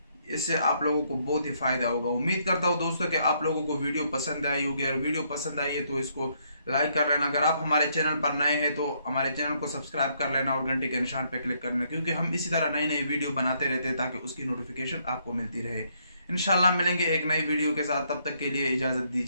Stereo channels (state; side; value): inverted; both; correlation -0.72